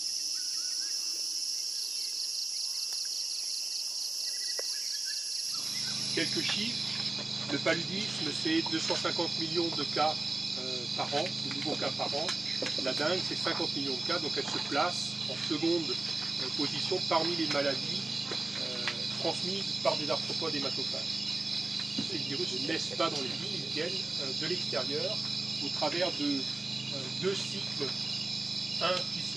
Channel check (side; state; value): left; quieter; 3.1 dB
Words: Quelques chiffres. Le paludisme, c'est 250 millions de cas par an, de nouveaux cas par an. La dengue, c'est 50 millions de cas, donc elle se place en seconde position parmi les maladies transmises par des arthropodes hématophages. Ces virus ne naissent pas dans les villes, ils viennent de l'extérieur au travers de deux cycles, un qui